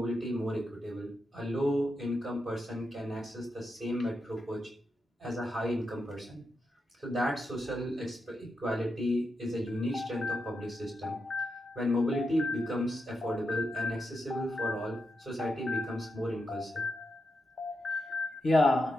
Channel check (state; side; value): normal; both; correlation 0.86